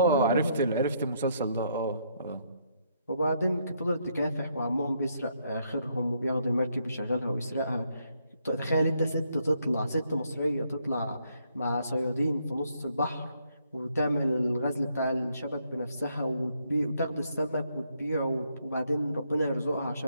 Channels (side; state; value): both; inverted; correlation -0.73